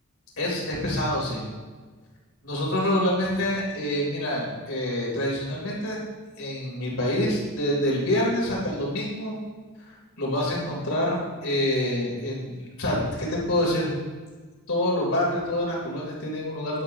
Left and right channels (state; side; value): normal; both; correlation 0.11